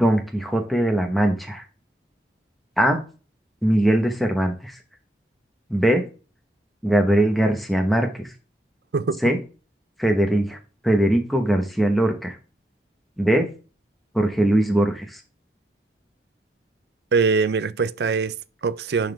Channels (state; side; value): normal; both; correlation 0.77